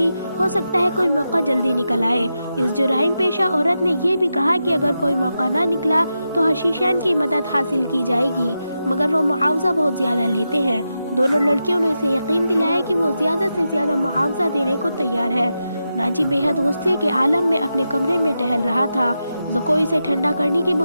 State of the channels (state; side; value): inverted; both; correlation -0.88